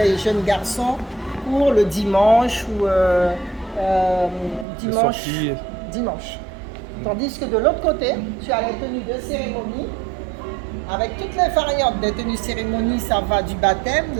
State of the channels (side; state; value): left; drops out; at 4.7 s